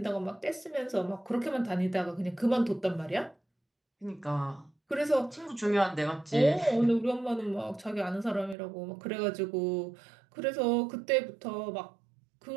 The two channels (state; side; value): drops out; left; at 8.6 s